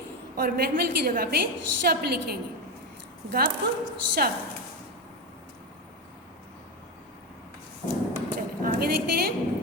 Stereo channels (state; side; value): normal; both; correlation 0.14